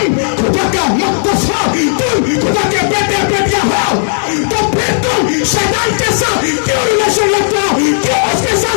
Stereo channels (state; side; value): silent; right; digital silence